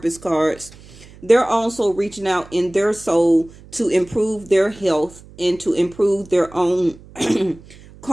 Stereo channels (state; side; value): noise; right; hum, 22 dB below the sound